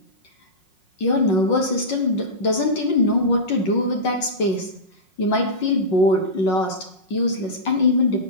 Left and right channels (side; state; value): right; late; 5.5 ms